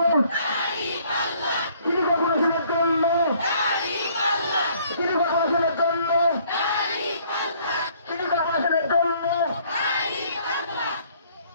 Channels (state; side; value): inverted; both; correlation -0.61